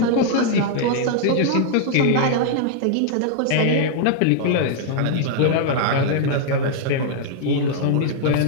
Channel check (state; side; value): different; both; correlation -0.01